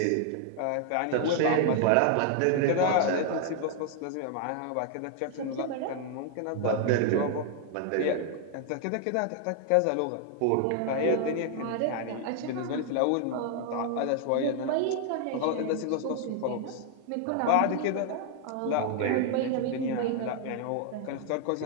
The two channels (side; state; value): both; different; correlation 0.00